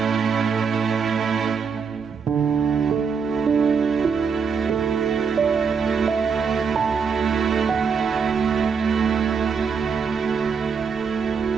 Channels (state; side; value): quieter; left; 6.0 dB